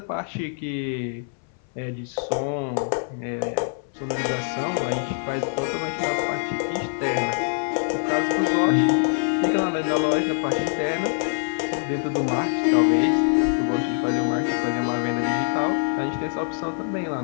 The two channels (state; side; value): silent; right; 60 dB below the other